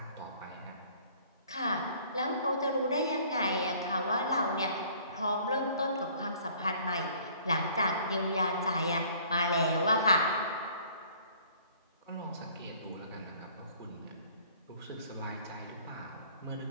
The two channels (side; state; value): both; inverted; correlation -0.55